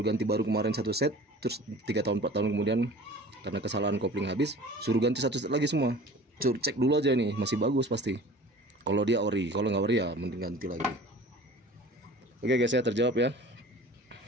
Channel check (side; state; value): both; normal; correlation 0.43